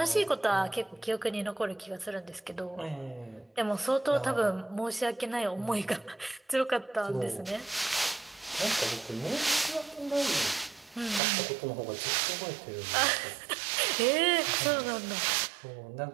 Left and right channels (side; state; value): left; drops out; at 11.2 s